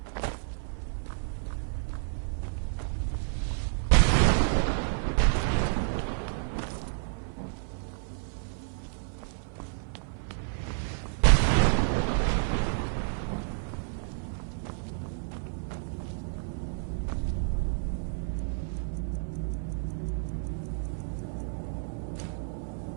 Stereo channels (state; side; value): silent; left; 58 dB below the other